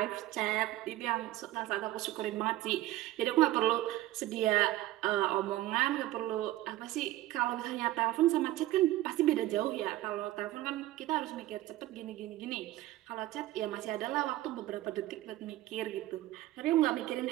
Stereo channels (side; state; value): left; quieter; 16.0 dB